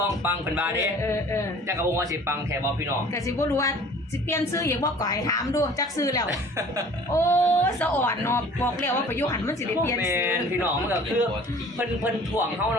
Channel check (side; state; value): both; normal; correlation 0.48